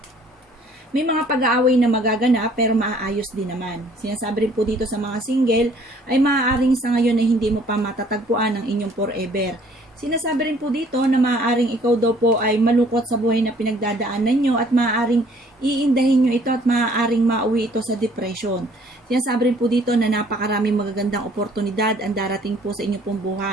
may mga pag-aaway na magaganap pero maaayos din naman. Sinasabi rin po dito sa mga single ay maaaring sa ngayon ay hindi mo pa matatagpuan ang inyong forever. Sinasabi rin po dito na maaaring ikaw daw po ay malungkot sa buhay na pinagdadaanan nyo at maaaring iindahin nyo ito at maaaring mauwi ito sa depression. Sinasabi rin po dito na napakaraming magagandang oportunidad ang darating po sa inyong pong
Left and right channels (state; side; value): normal; both; correlation 0.58